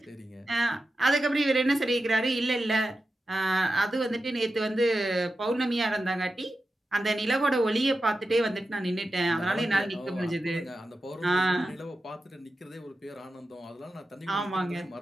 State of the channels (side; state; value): both; normal; correlation 0.91